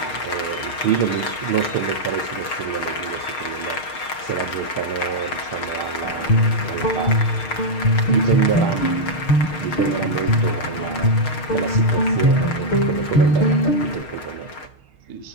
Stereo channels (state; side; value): late; right; 6.5 ms